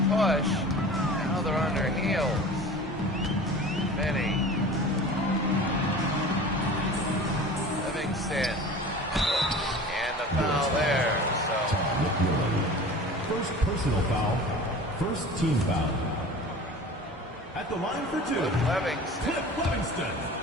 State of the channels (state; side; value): normal; both; correlation 0.39